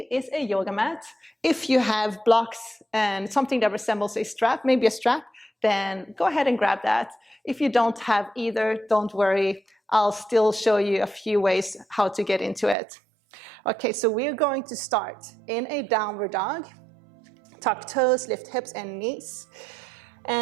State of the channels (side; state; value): left; drops out; at 12.8 s